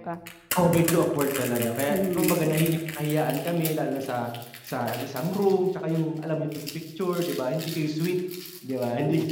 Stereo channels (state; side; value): identical; both; correlation 1.00